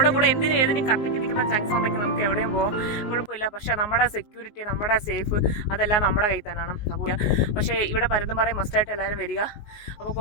കൂടെ എന്തിനും ഏതിനും കത്തിക്ക് നിൽക്കുന്ന ചങ്സ് ഉണ്ടെങ്കിൽ നമുക്ക് എവിടെയും പോകാം, കുഴപ്പമില്ല. പക്ഷേ നമ്മുടെ സെക്യൂരിറ്റി, നമ്മുടെ സേഫ്, അതെല്ലാം നമ്മുടെ കയ്യിൽ തന്നെയാണ്. അപ്പോൾ പക്ഷേ ഇവിടെ പരുന്തുംപാറയിൽ മസ്റ്റായിട്ട് എല്ലാവരും വരിക. അപ്പോൾ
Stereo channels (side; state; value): right; late; 19 ms